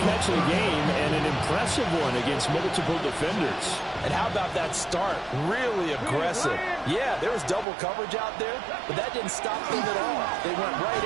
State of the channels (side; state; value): left; drops out; at 7.7 s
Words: catch of the game, and an impressive one against multiple defenders. And how about that start? Really aggressive. Yeah, there was double coverage out there, but that didn't stop them at all. They went right